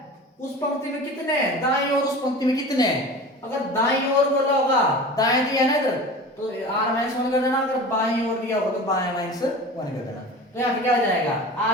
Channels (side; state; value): both; normal; correlation 0.35